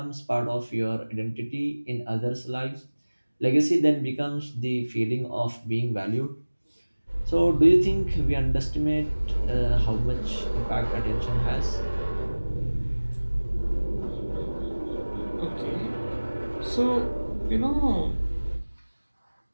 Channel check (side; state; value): both; inverted; correlation -1.00